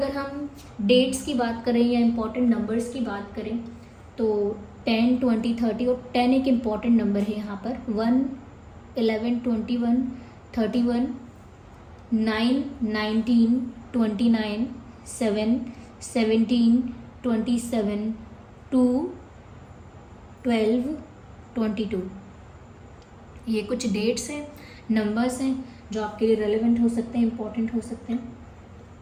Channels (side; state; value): both; identical; correlation 1.00